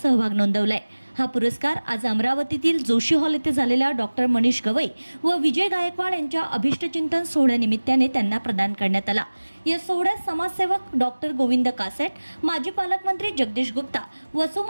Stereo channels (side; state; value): both; inverted; correlation -1.00